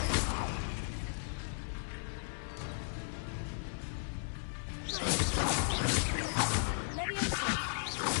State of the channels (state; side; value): silent; right; digital silence